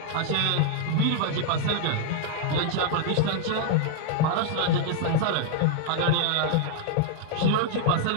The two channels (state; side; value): different; both; correlation 0.00